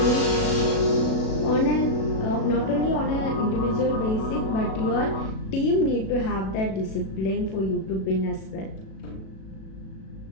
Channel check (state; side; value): late; right; 37 ms